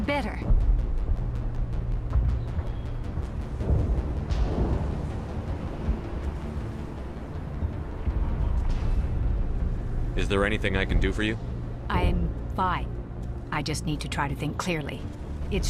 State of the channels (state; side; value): identical; both; correlation 1.00